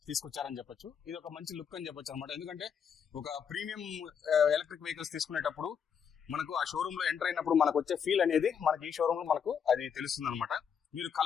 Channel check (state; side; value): quieter; right; 7.4 dB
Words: తీసుకొచ్చారని చెప్పొచ్చు. ఇది ఒక మంచి లుక్ అని చెప్పొచ్చు అనమాట. ఎందుకంటే ఒక ప్రీమియం ఎలక్ట్రిక్ వెహికల్స్ తీసుకునేటప్పుడు మనకు ఆ షోరూమ్ లో ఎంటర్ అయినప్పుడు మనకు వచ్చే ఫీల్ అనేది మనకి ఈ షోరూమ్ లో మనకు అది తెలుస్తుంది అనమాట. మీరు